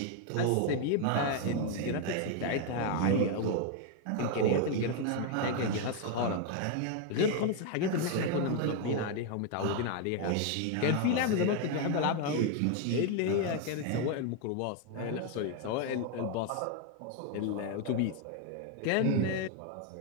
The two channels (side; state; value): both; different; correlation 0.01